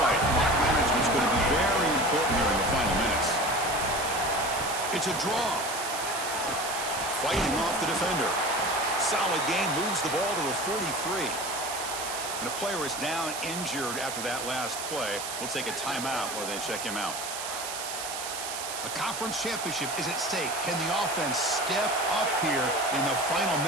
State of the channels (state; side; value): noise; right; hiss, 6 dB below the sound